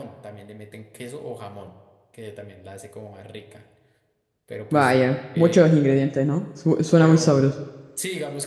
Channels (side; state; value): both; identical; correlation 1.00